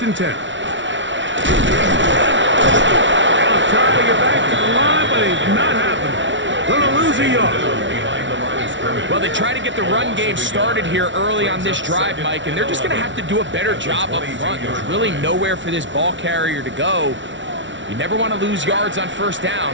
and 10. They'll try to get back to the line, but it's not happening. Gonna lose a yard. Well, they try to get the run game started here early on this drive, Mike, and they're just going to have to do a better job up front. There's really nowhere for this ball carrier to go. You never want to lose yards on 1st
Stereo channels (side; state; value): left; late; 0.55 ms